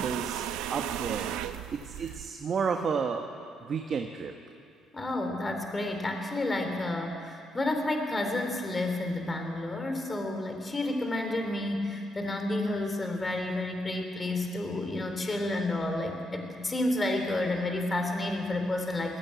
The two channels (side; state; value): both; normal; correlation 0.78